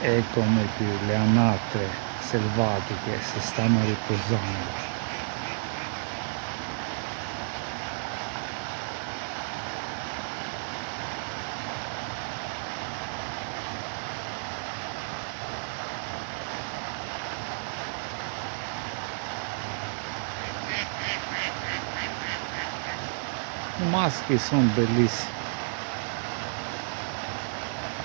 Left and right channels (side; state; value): left; silent; 58 dB below the other